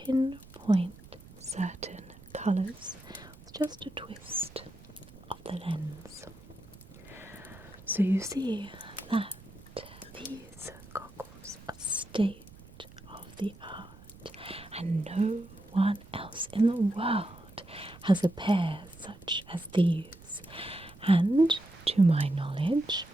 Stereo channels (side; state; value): right; noise; rumble, 21 dB below the sound